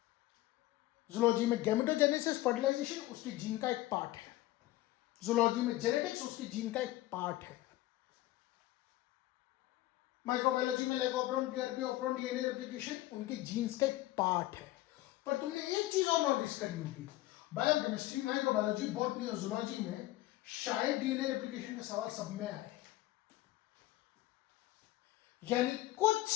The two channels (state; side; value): quieter; right; 16.7 dB